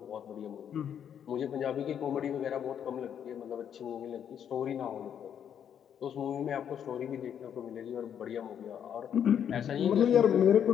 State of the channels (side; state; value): right; quieter; 8.8 dB